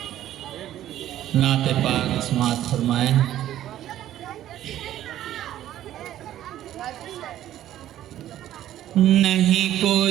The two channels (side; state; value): left; quieter; 12.6 dB